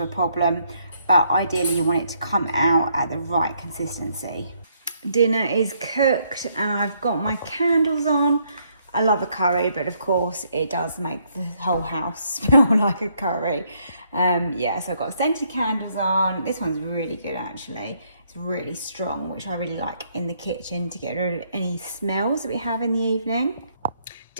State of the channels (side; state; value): both; inverted; correlation -0.71